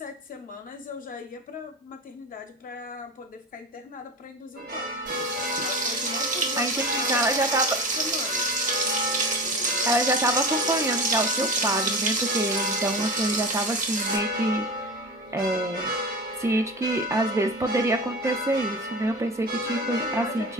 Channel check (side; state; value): both; normal; correlation 0.31